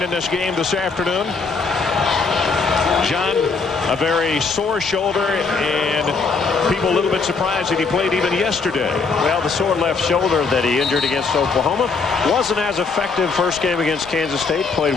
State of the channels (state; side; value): quieter; right; 4.7 dB